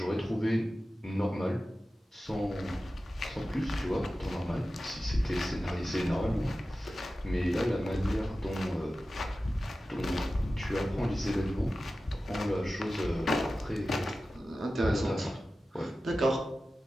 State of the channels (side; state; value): both; normal; correlation 0.94